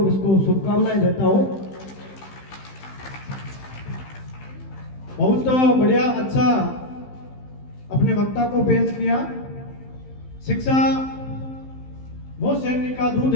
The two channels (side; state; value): right; late; 15 ms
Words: इसको शुभकामनाएं देता हूँ। बहुत बढ़िया, अच्छा अपने वक्ता को पेश किया। शिक्षा वो सैनिक का दूध